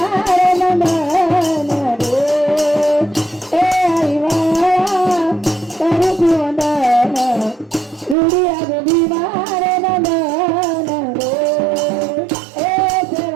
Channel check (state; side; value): drops out; left; at 8.2 s